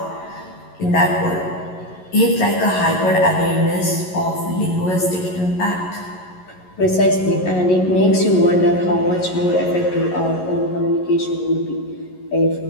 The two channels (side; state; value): right; late; 11 ms